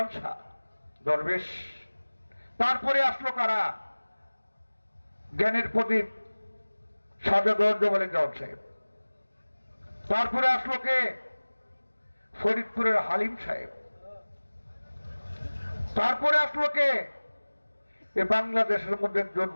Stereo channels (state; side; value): inverted; both; correlation -1.00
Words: শাহ দরবেশ। তারপরে আসলো কারা? জ্ঞানের প্রদীপ সাজাদ মালিক দেওয়ান সাহেব। তারপরে আসলো কে? ফরিদপুরের হালিম সাহেব। তারপরে আসলো কে? এ বাংলাদেশের মধ্যে একজন